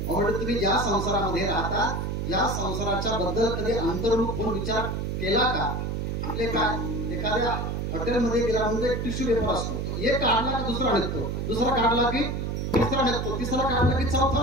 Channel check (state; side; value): noise; right; hum, 2 dB below the sound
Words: तुम्ही ज्या संसारामध्ये राहता या संसाराच्या बद्दल कधी अंतर्मुख होऊन विचार केला का? म्हणजे काय, एखाद्या हॉटेलमध्ये गेला म्हणजे एक टिश्यू पेपर असतो. एक काढला की दुसरा निघतो, दुसरा काढला की तिसरा निघतो, तिसरा काढला की